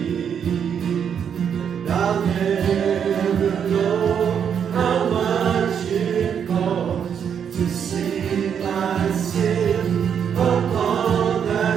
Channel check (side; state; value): left; quieter; 7.9 dB